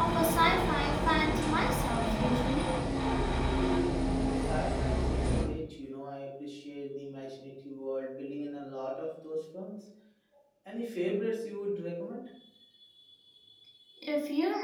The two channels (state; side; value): identical; both; correlation 1.00